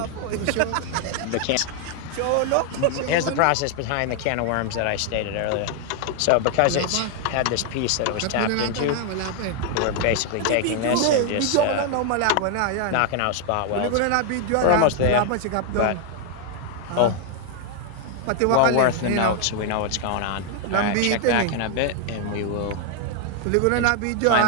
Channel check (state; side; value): different; both; correlation 0.00